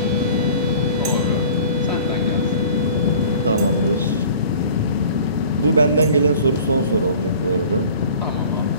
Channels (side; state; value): both; inverted; correlation -0.45